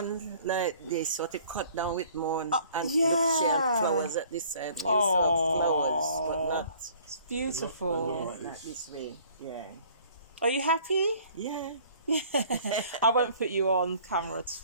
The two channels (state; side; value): inverted; both; correlation -0.54